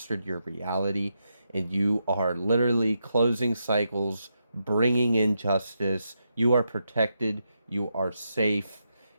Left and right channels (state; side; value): inverted; both; correlation -0.84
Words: your reality, and you are literally closing cycles, bringing in justice. You are protected, you are safe.